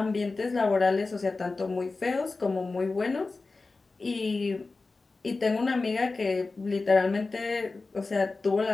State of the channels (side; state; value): right; quieter; 3.7 dB